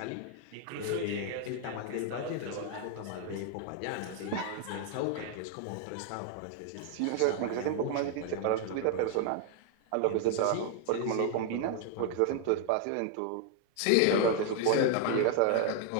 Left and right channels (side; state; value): both; different; correlation 0.00